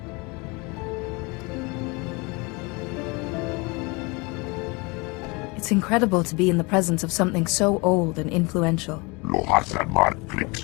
It's incredible to be in the presence of something so old and influential.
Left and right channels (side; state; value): right; quieter; 27.6 dB